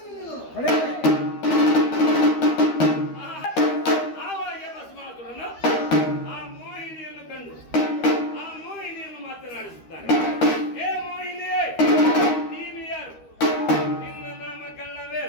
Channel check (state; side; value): late; right; 13 ms